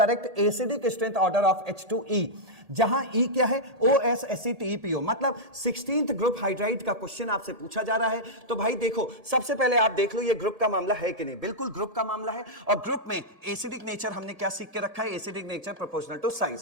acidic strength order of H2E, जहां E क्या है? OSACTEPO, मतलब 16th ग्रुप हाइड्राइड का क्वेश्चन आपसे पूछा जा रहा है। तो भाई देखो, सबसे पहले आप देख लो ये ग्रुप का मामला है कि नहीं। बिल्कुल ग्रुप का मामला है, और ग्रुप में एसिडिक नेचर हमने क्या सीख के रखा है? Acidic nature proportional to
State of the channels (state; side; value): late; left; 1.7 ms